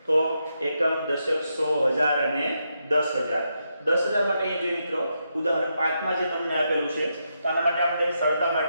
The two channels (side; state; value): both; inverted; correlation -0.83